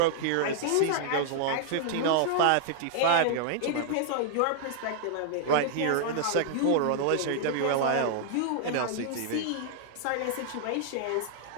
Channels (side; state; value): both; different; correlation -0.01